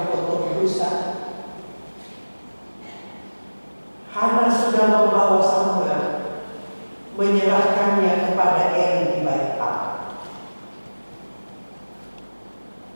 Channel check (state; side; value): inverted; both; correlation -1.00